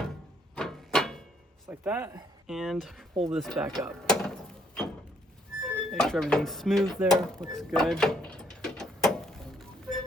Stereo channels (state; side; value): normal; both; correlation 0.68